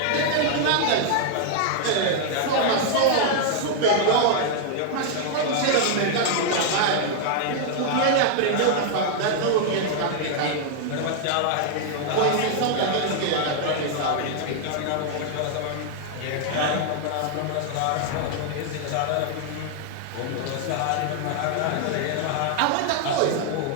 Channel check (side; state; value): both; different; correlation 0.00